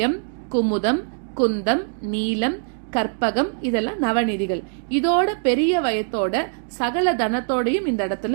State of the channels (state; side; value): silent; left; digital silence